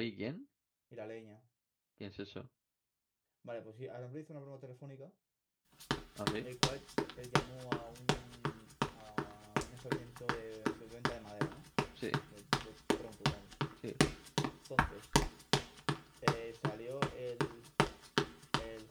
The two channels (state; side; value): identical; both; correlation 1.00